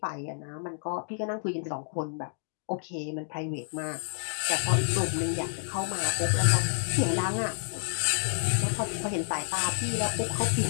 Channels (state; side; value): silent; right; digital silence